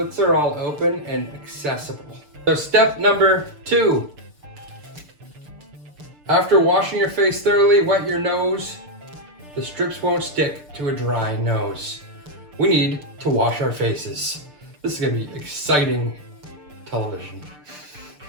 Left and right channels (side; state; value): left; late; 6.7 ms